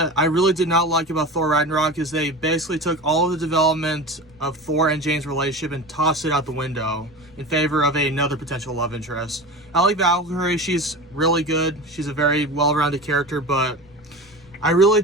I really did not like about Thor Ragnarok is they basically took all of the development of Thor and Jane's relationship and tossed it out the window in favor of another potential love interest. I like Valkyrie, she's really good. She's a very well-rounded character, but I really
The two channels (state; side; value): noise; left; rumble, 27 dB below the sound